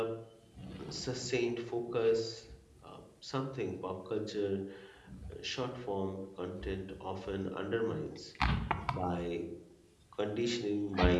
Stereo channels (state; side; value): identical; both; correlation 1.00